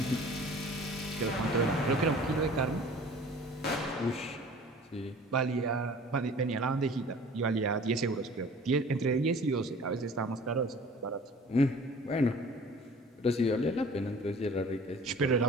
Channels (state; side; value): normal; both; correlation 0.46